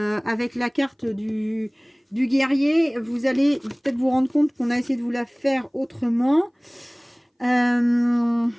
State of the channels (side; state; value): both; identical; correlation 1.00